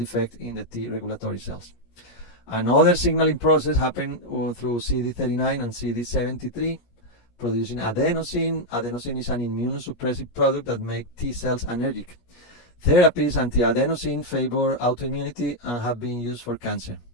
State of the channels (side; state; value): right; late; 17 ms